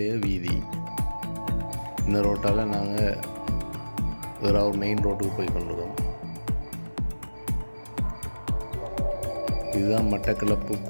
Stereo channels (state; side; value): inverted; both; correlation -1.00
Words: வீதி. இந்த ரோட்டால் நாங்கள் ஏறாவூர் மெயின் ரோட்டுக்கு போய் கொண்டிருக்கோம். இதுதான் மட்டக்களப்பு